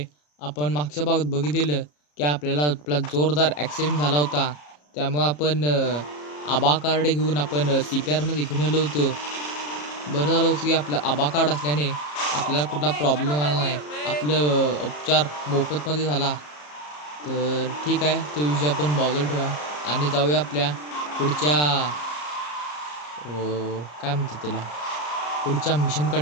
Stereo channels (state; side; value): late; right; 34 ms